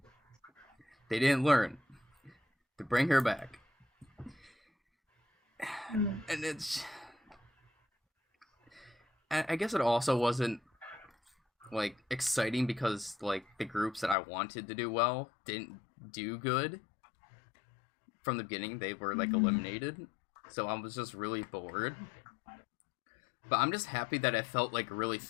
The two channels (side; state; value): right; drops out; at 14.2 s